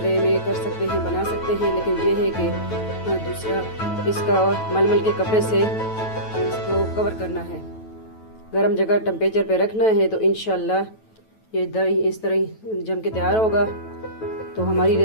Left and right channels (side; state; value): right; late; 9.2 ms